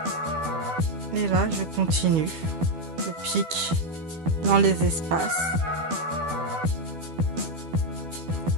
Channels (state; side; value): late; left; 12 ms